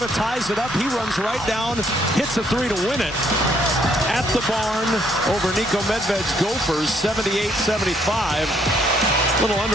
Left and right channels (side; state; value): both; normal; correlation 0.69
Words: ties it up. He runs right down, hits a 3 to win it. At the barn over Nico Medved's Gophers, 78-75. A little